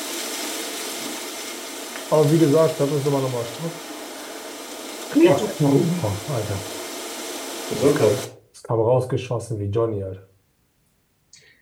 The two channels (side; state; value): both; identical; correlation 1.00